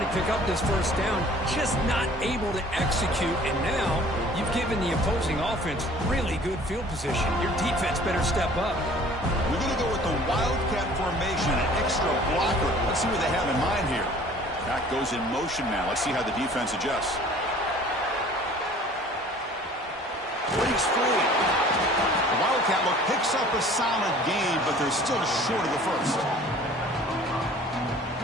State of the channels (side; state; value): both; normal; correlation 0.50